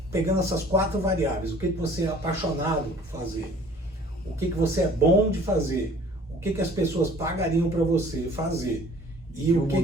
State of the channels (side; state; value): both; normal; correlation 0.51